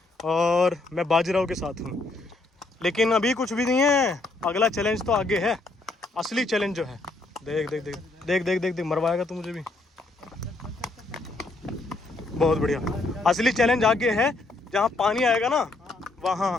और मैं बाजीराव के साथ हूँ। लेकिन अभी कुछ भी नहीं है, अगला चैलेंज तो आगे है। असली चैलेंज जो है, देख देख देख देख देख देख देख, मरवाएगा तू मुझे भी। बहुत बढ़िया, असली चैलेंज आगे है। जहाँ पानी आएगा ना, वहाँ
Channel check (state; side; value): quieter; right; 3.2 dB